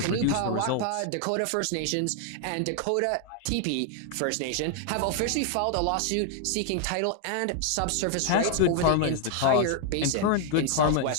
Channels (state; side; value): different; both; correlation 0.00